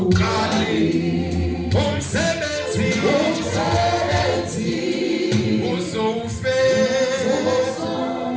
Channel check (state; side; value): identical; both; correlation 1.00